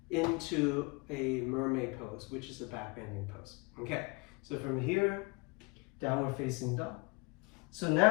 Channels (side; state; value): right; quieter; 28.6 dB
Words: into a mermaid pose, which is a back bending pose. Okay, so from here, downward facing dog. So